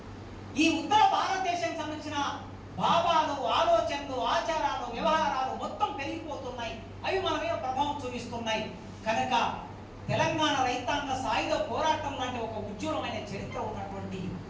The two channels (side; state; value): both; identical; correlation 1.00